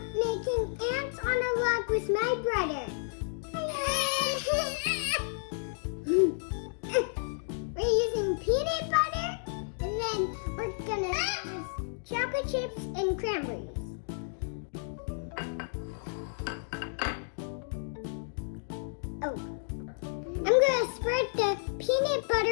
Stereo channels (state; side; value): silent; right; digital silence